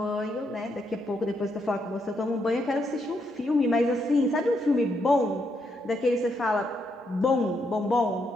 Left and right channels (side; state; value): both; normal; correlation 0.78